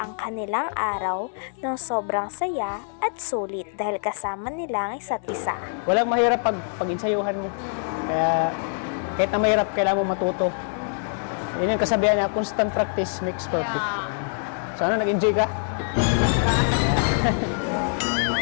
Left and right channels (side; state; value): right; silent; digital silence